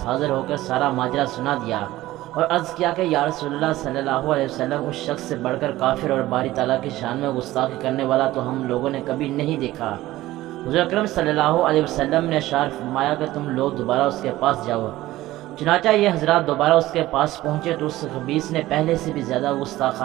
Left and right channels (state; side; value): quieter; left; 16.4 dB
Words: حاضر ہو کر سارا ماجرا سنا دیا اور عرض کیا کہ یا رسول اللہ صلی اللہ علیہ وسلم، اس شخص سے بڑھ کر کافر اور باری تعالیٰ کی شان میں گستاخی کرنے والا تو ہم لوگوں نے کبھی نہیں دیکھا۔ حضور اکرم صلی اللہ علیہ وسلم نے اشار فرمایا کہ تم لوگ دوبارہ اس کے پاس جاؤ۔ چنانچہ یہ حضرات دوبارہ اس کے پاس پہنچے تو اس خبیث نے پہلے سے بھی زیادہ